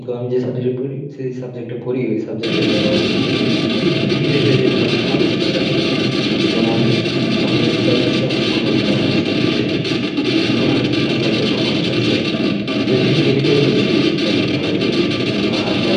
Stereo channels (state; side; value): identical; both; correlation 1.00